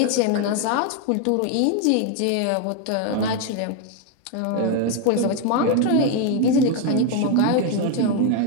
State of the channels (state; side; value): different; both; correlation 0.01